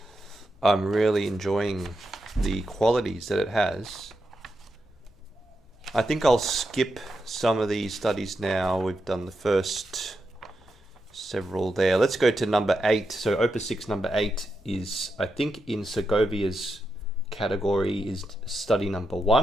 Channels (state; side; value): normal; both; correlation 0.86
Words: I'm really enjoying the qualities that it has. I think I'll skip some of these studies now. We've done the first several there. Let's go to number 8. So Opus 6 number 8 is, I think, in Segovia's category, is study number